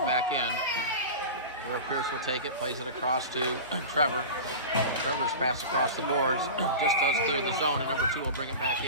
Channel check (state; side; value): inverted; both; correlation -0.30